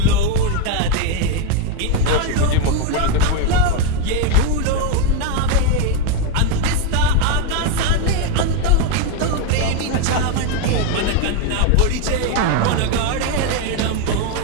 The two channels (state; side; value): different; both; correlation 0.02